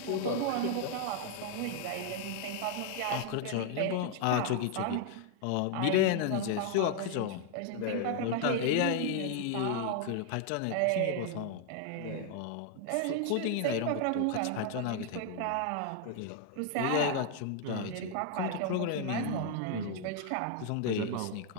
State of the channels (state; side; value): different; both; correlation 0.00